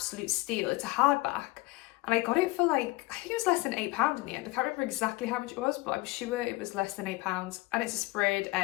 steal. It's a hardback, and I got it for like, I think it was less than £8 in the end. I can't remember exactly how much it was, but I'm sure it was less than £8, and it's a sprayed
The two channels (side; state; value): right; quieter; 21.7 dB